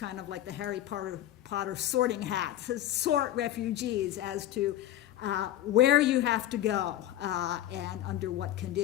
of like the Harry Potter sorting hat, to sort refugees as to where you have to go and under what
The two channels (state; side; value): quieter; right; 13.2 dB